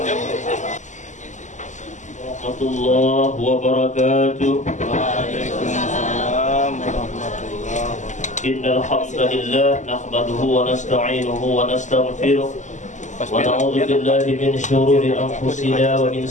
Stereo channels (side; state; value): right; late; 0.35 ms